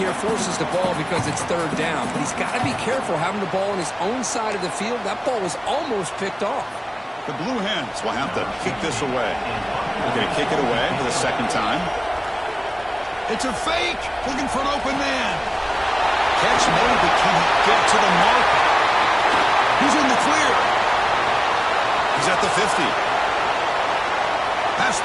forces the ball because it's third down. But he's got to be careful having the ball on his own side of the field. That ball was almost picked off. The Blue Hens will have to kick this away. They're going to kick it away for the second time. It's a fake. Looking for an open man. Catch made, but can't get to the mark. He's in the clear. He's at the 50. Past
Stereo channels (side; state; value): both; identical; correlation 1.00